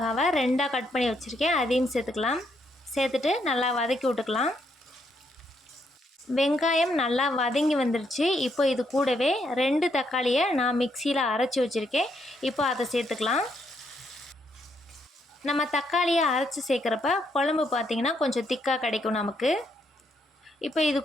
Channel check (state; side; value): normal; both; correlation 0.75